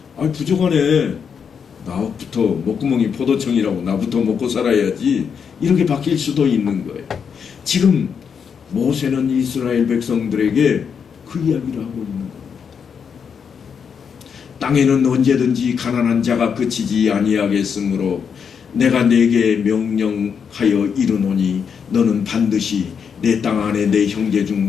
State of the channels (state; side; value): quieter; right; 6.8 dB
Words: 부족하네. 나부터 목구멍이 포도청이라고 나부터 먹고 살아야지. 이렇게 바뀔 수도 있는 거예요. 지금 모세는 이스라엘 백성들에게 그 이야기를 하고 있는 겁니다. 땅에는 언제든지 가난한 자가 그치지 아니하겠으므로 내가 네게 명령하여 이르노니 너는 반드시 내 땅 안에 내 형제 중